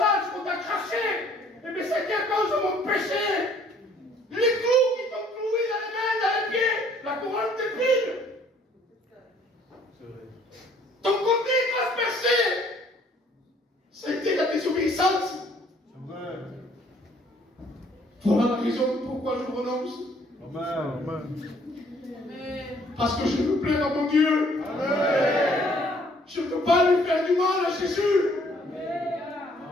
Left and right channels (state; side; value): normal; both; correlation 0.61